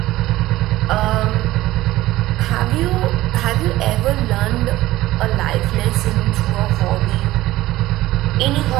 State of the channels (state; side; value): quieter; left; 16.6 dB